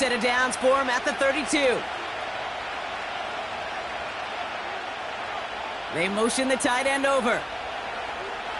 of downs for him at the 32. They motion the tight end over.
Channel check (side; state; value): both; identical; correlation 1.00